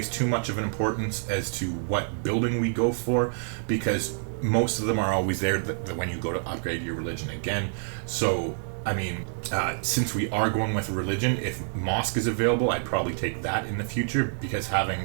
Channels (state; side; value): silent; left; digital silence